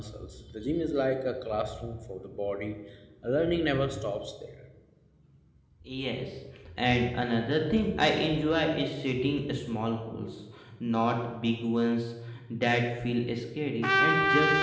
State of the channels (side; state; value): both; identical; correlation 1.00